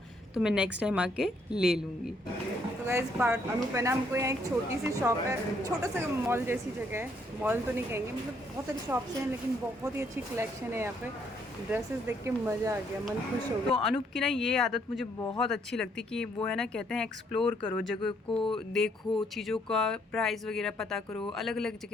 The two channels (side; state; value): both; normal; correlation 0.69